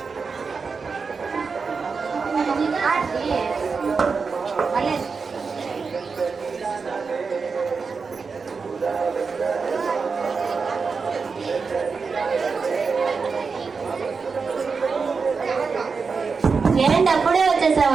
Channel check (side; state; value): left; quieter; 5.0 dB